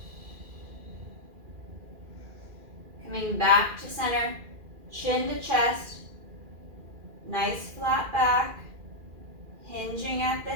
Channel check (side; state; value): left; late; 2.4 ms